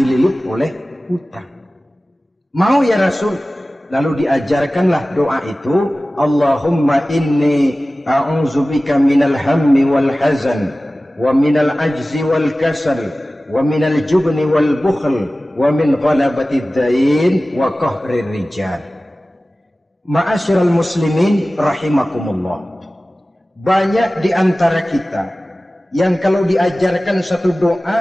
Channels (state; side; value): normal; both; correlation 0.97